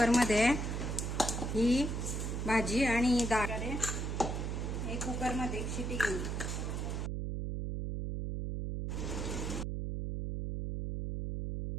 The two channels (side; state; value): right; noise; hum, 2 dB below the sound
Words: ही भाजी आणि डाळ हे कुकरमध्ये एक शिटी घेईन.